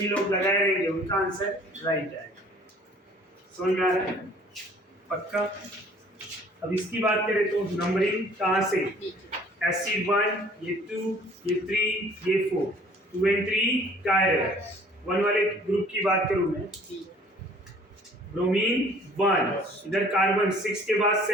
लोग लगाए रहेंगे उनका आंसर राइट है। समझ में आ रहा है? पक्का? अब इसकी बात करें तो नंबरिंग कहाँ से? एसिड 1, ये 2, ये 3, ये 4, 2 and 3 कायरल। 1 वाले ग्रुप की बात करूं मैं, ब्रोमीन 1, इधर कार्बन 6 के बाद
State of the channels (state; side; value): normal; both; correlation 0.54